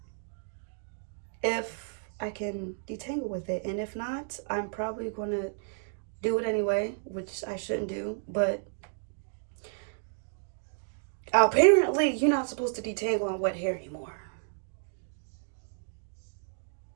if I can detangle with it, and if not, I'm probably going to do it anyway, which I shouldn't do, but apparently you're not supposed to detangle on wet hair anymore.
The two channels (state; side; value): silent; left; digital silence